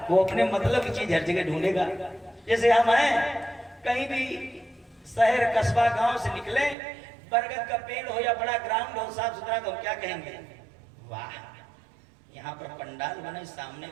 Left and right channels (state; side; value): drops out; left; at 6.8 s